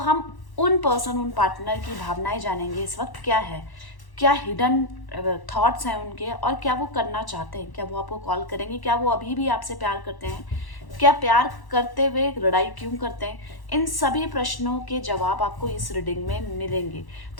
उन पर्सन, उन पार्टनर की भावनाएं जानेंगे इस वक्त क्या है, क्या हिडन थॉट्स हैं उनके और क्या वो करना चाहते हैं। क्या वो आपको कॉल करेंगे? क्या वो अभी भी आपसे प्यार करते हैं? क्या प्यार करते हुए लड़ाई क्यों करते हैं? इन सभी प्रश्नों के जवाब आपको इस रीडिंग में मिलेंगे।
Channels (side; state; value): right; late; 1.1 ms